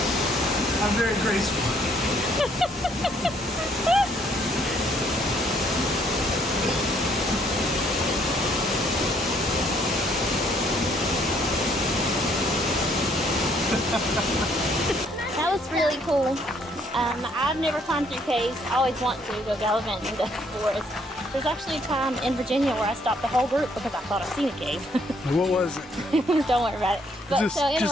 cool. I've never climbed through caves. I always want to go gallivanting in the forest. There's actually a time in Virginia where I stopped the whole group because I thought I'd seen a cave. What was it? Don't worry about it. But Just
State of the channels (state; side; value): normal; both; correlation 0.67